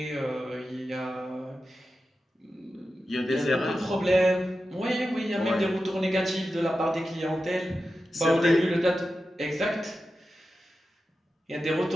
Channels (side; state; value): both; normal; correlation 0.92